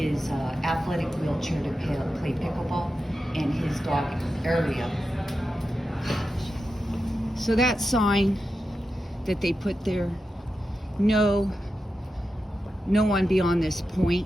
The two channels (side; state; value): both; normal; correlation 0.90